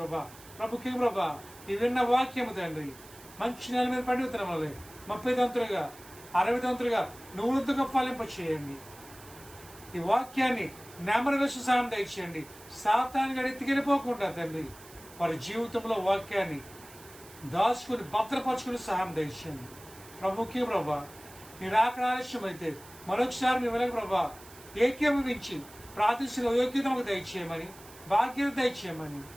ప్రభుకి ప్రభా ఈ విన్న వాక్యము తండ్రి మంచి నెల మీద పండుగ వల్ల 30 దంతులుగా 60 దంతులుగా 100గా ఫలింప చేయండి. ఈ వాక్యాన్ని నెమరు వేసి సహాయం దయచేయండి. సాతాను ఎత్తికెళ్ళిపోకుండా తండ్రి వారి జీవితంలో వాక్యాన్ని దాచుకుని భద్రపరచుకుని సహాయం దయచేయండి. ప్రభుకి ప్రభా నీ రాకడ ఆలస్యం అయితే మరొకసారి మీ వెనక ప్రభా ఏకీభవించి ప్రార్థించిన యోగ్యతకు దయచేయమని, భాగ్యత దయచేయమని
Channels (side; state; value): right; noise; hiss, 20 dB below the sound